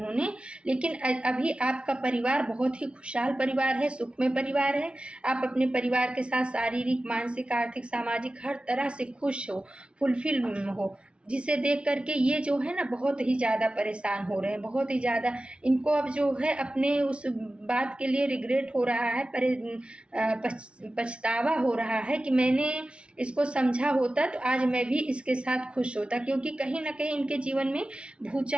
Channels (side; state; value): left; late; 0.058 ms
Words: लेकिन अभी आपका परिवार बहुत ही खुशहाल परिवार है, सुखमय परिवार है। आप अपने परिवार के साथ शारीरिक, मानसिक, आर्थिक, सामाजिक हर तरह से खुश हो, फुलफिल हो, जिसे देख करके ये जो है ना बहुत ही ज़्यादा परेशान हो रहे हैं, बहुत ही ज़्यादा। इनको अब जो है अपने उस बात के लिए रिग्रेट हो रहा है, पछतावा हो रहा है कि मैंने इसको समझा होता तो आज मैं भी इसके साथ खुश होता। क्योंकि कहीं ना कहीं इनके जीवन में